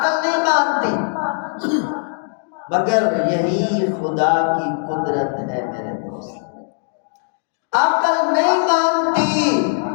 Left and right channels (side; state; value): right; silent; digital silence